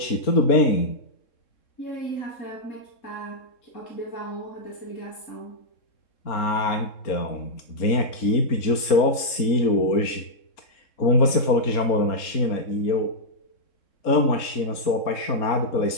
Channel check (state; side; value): late; right; 3.7 ms